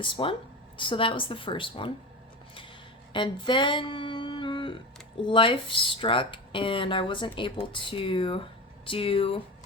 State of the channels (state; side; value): normal; both; correlation 0.25